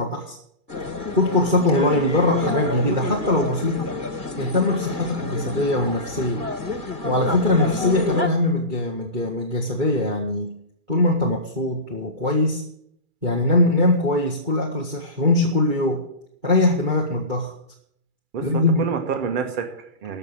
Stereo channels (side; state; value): left; late; 2.3 ms